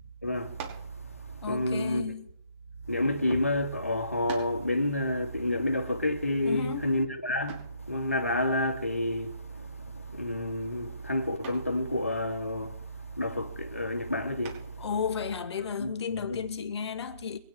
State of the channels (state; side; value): inverted; both; correlation -0.70